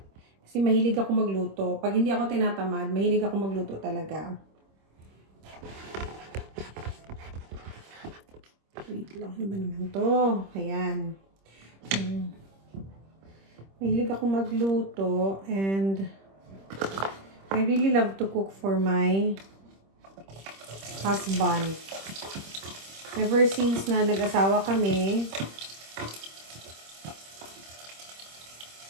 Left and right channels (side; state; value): left; late; 26 ms